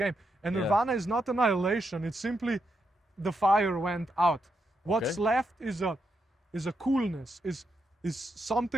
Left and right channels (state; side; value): normal; both; correlation 0.82